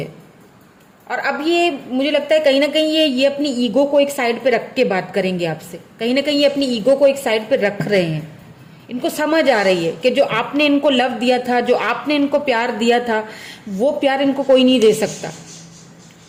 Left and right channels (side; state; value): both; identical; correlation 1.00